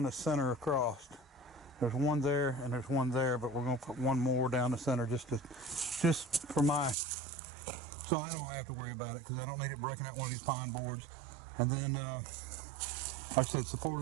the center across. There's one there and there's one there, but we're gonna put one more down the center just for my, so I don't have to worry about it, because I don't need it breaking out one of these pine boards. And then, like I said,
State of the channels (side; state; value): left; drops out; at 7.0 s